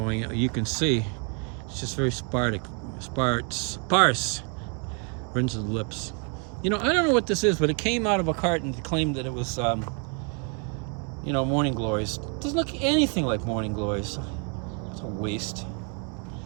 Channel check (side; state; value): left; quieter; 37.7 dB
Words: you can see it's just very sparse. Rinse the lips. I don't know what this is, but it came out of a carton to claim that it was, morning glories. It doesn't look anything like morning glories. It's a waste.